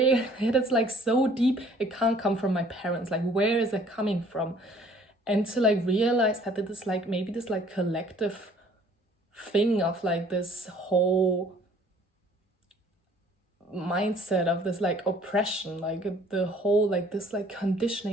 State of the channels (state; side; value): normal; both; correlation 0.56